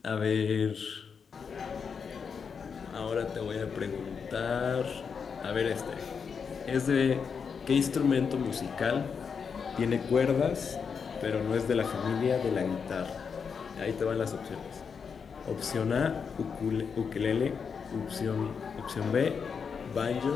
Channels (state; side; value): quieter; right; 6.2 dB